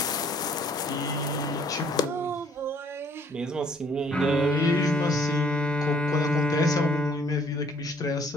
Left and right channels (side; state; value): both; normal; correlation 0.61